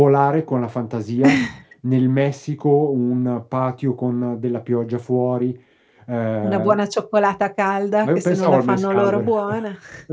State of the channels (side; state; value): both; identical; correlation 1.00